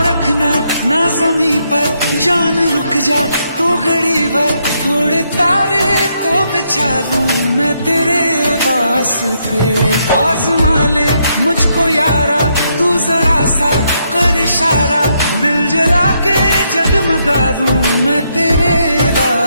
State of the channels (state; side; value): inverted; both; correlation -0.77